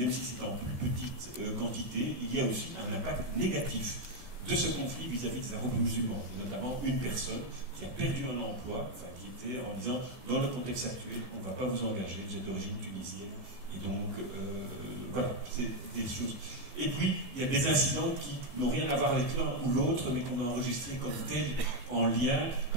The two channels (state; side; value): late; left; 14 ms